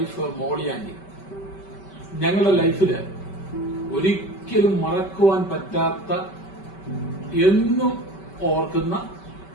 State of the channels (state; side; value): late; right; 5.2 ms